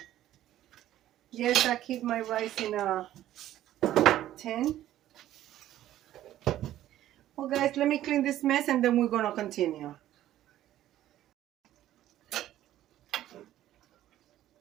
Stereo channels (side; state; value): left; quieter; 13.1 dB